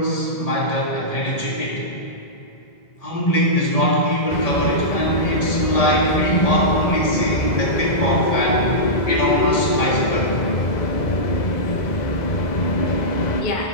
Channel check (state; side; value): late; right; 2.0 ms